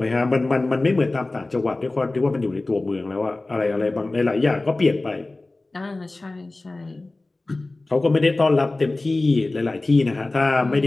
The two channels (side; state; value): right; quieter; 3.0 dB